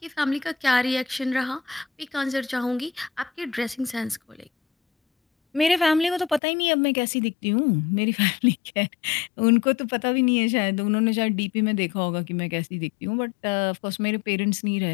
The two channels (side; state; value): right; drops out; at 6.4 s